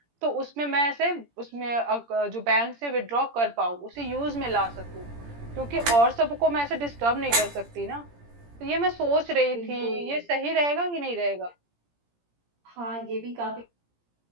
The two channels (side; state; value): left; late; 17 ms